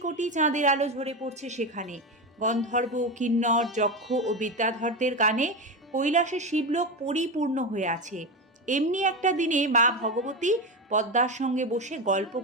কোটি চাঁদের আলো ঝরে পড়ছে সেখানে। গন্ধর্ব, কিন্নর, যক্ষ ও বিদ্যাধরদের গানে কৈলাসে শিবলোক পরিপূর্ণ হয়ে আছে। এমনি একটা দিনে মা ভগবতী পদ্মার সঙ্গে বসে গল্প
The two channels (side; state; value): both; normal; correlation 0.18